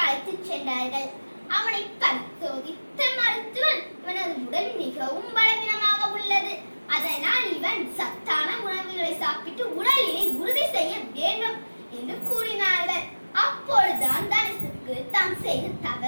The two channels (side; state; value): both; inverted; correlation -1.00